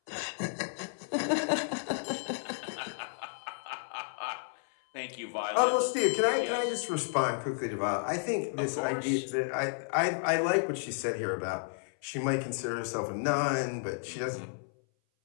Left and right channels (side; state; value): right; silent; 56 dB below the other